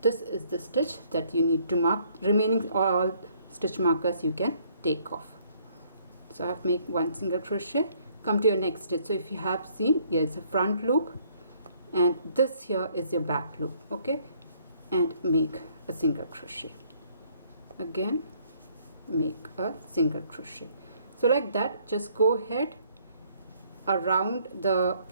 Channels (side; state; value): both; inverted; correlation -0.64